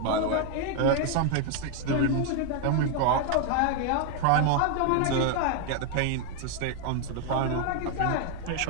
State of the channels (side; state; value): both; different; correlation 0.01